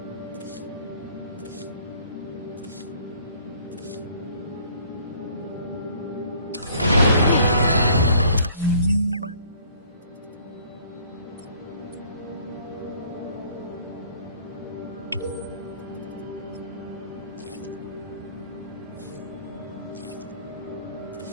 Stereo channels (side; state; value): both; inverted; correlation -0.57